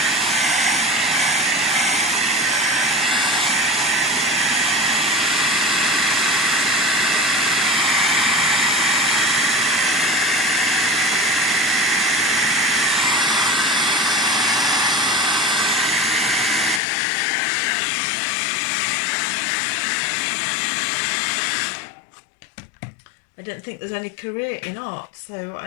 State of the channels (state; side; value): drops out; right; at 16.8 s